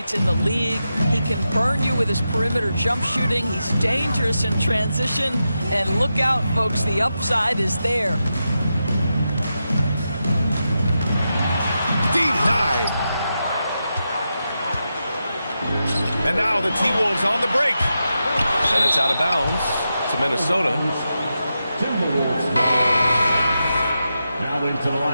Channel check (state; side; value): inverted; both; correlation -0.88